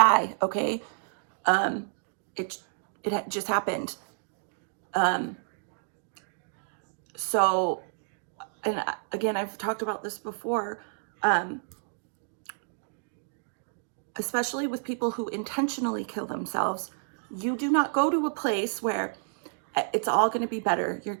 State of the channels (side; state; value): left; silent; digital silence